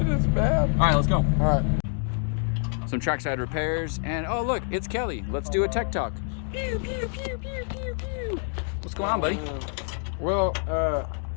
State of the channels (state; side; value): silent; right; 59 dB below the other